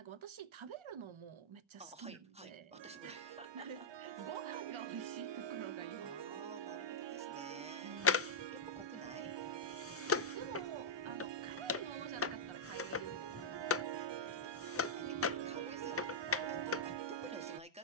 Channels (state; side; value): normal; both; correlation -0.09